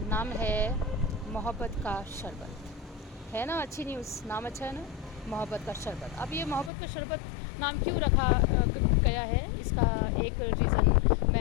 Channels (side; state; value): right; drops out; at 6.7 s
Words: नाम है मोहब्बत का शरबत। है ना अच्छी न्यूज़, नाम अच्छा है ना, मोहब्बत का शरबत। अब ये मोहब्बत का शरबत नाम क्यों रखा गया है, इसका एक रीज़न